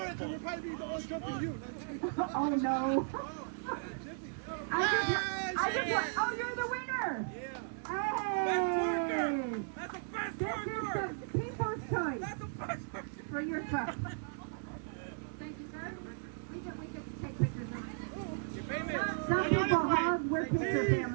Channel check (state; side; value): silent; left; digital silence